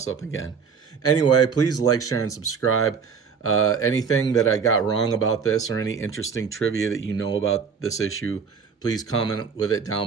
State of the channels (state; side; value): quieter; left; 6.1 dB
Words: up again. Anyway, please like, share, and subscribe. Anything that I got wrong about this, or any interesting trivia that you know about this issue, please comment with it